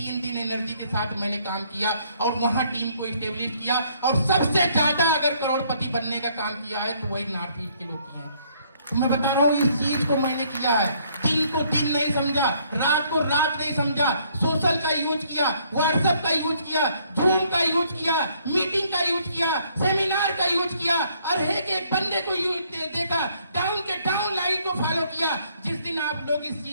दिन एनर्जी के साथ मैंने काम किया और वहाँ टीम को स्टेब्लिश किया। और सबसे ज्यादा अगर करोड़पति बनने का काम किया है तो वही नॉर्थ ईस्ट के लोग किए हैं। तो मैं बता रहा हूँ इस चीज को मैंने किया है। दिन को दिन नहीं समझा, रात को रात नहीं समझा, सोशल का यूज किया, व्हाट्सएप का यूज किया, जूम का यूज किया, मीटिंग का यूज किया, सेमिनार का यूज किया, और एक बंदे को यूज देखा, डाउन के डाउन लाइन को फॉलो किया। जिस दिन आप लोग इस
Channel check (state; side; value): inverted; both; correlation -0.66